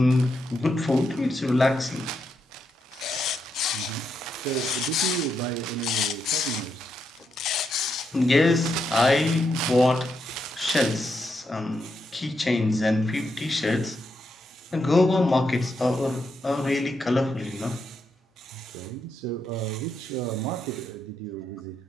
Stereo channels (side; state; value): both; normal; correlation 0.82